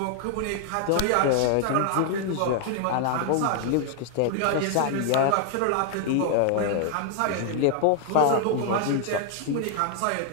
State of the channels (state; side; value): different; both; correlation 0.00